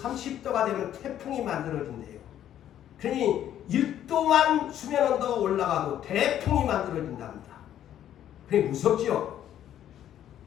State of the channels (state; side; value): quieter; right; 11.1 dB